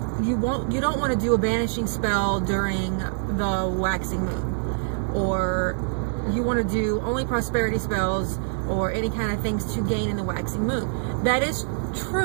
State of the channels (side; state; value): left; silent; digital silence